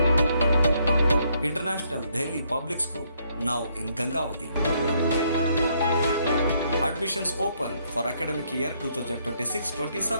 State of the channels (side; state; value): both; inverted; correlation -0.72